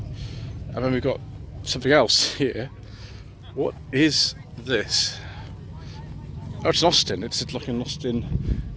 And then we've got something else here. What is this? Oh, it's an Austin. It's like an Austin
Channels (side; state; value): both; identical; correlation 1.00